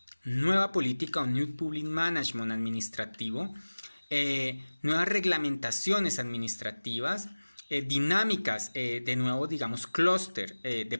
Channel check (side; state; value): both; inverted; correlation -1.00